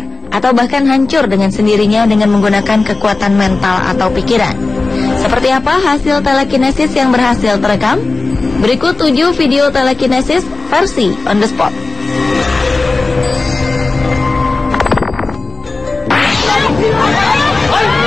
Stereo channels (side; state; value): right; quieter; 3.5 dB